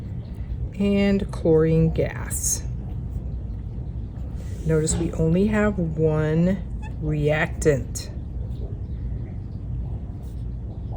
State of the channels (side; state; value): both; identical; correlation 1.00